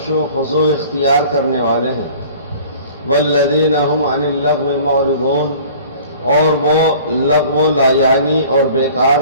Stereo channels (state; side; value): inverted; both; correlation -0.48